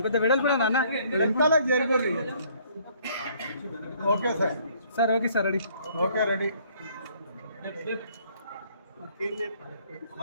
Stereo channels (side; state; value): both; inverted; correlation -0.62